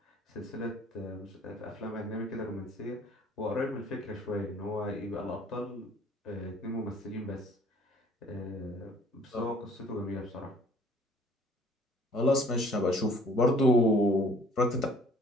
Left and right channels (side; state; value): both; normal; correlation 0.56